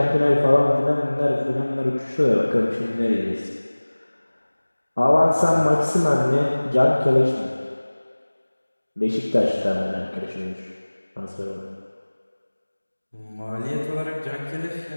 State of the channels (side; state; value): both; inverted; correlation -1.00